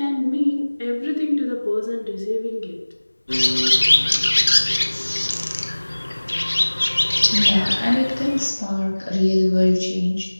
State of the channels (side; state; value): both; inverted; correlation -1.00